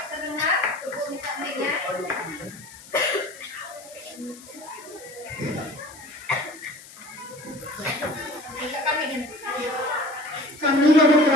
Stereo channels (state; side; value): noise; left; hiss, 19 dB below the sound